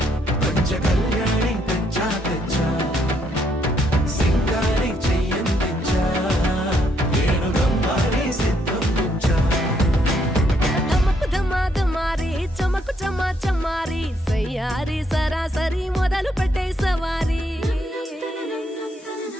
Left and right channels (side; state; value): both; normal; correlation 0.73